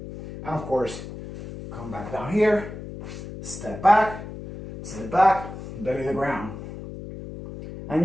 And of course, come back down here, step back, sit back, belly to the ground. And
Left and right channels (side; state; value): left; noise; hum, 11 dB below the sound